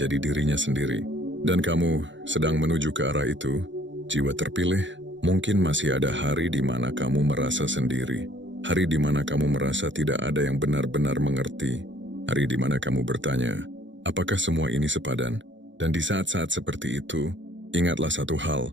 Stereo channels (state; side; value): late; left; 0.54 ms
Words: dirinya sendiri. Dan kamu sedang menuju ke arah itu. Jiwa terpilih, mungkin masih ada hari di mana kamu merasa sendiri. Hari di mana kamu merasa tidak ada yang benar-benar mengerti. Hari di mana kamu bertanya, apakah semua ini sepadan? Dan di saat-saat seperti itu, ingatlah satu hal,